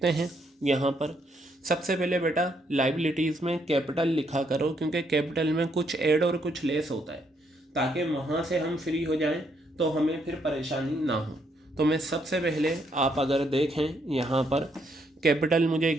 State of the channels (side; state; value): both; normal; correlation 0.74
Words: हैं यहाँ पर। सबसे पहले बेटा लाइबिलिटीज़ में कैपिटल लिखा करो, क्योंकि कैपिटल में कुछ ऐड और कुछ लेस होता है, ताकि वहाँ से हम फ्री हो जाएं तो हमें फिर परेशानी ना हो। तो मैं सबसे पहले, आप अगर देखें यहाँ पर कैपिटल मुझे